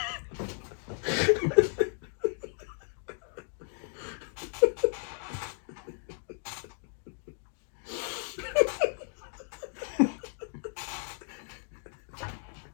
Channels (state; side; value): silent; right; 55 dB below the other